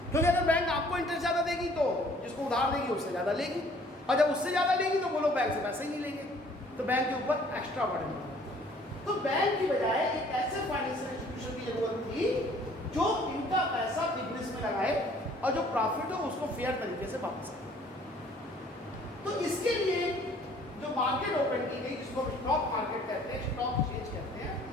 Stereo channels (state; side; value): normal; both; correlation 0.57